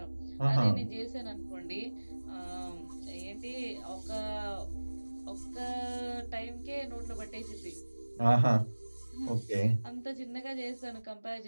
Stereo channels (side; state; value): both; inverted; correlation -1.00